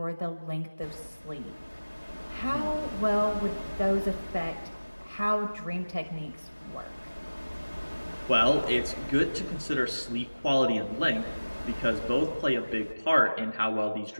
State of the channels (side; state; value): both; inverted; correlation -1.00